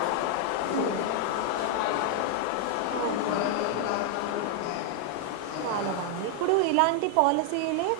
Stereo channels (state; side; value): different; both; correlation 0.00